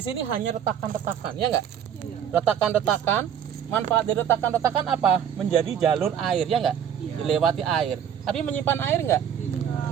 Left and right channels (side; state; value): left; quieter; 8.9 dB